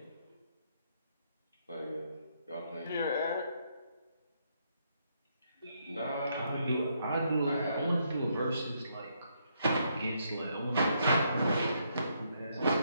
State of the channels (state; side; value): inverted; both; correlation -0.75